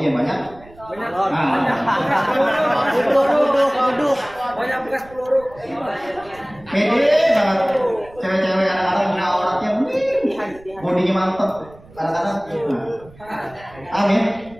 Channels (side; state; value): right; noise; rumble, 23 dB below the sound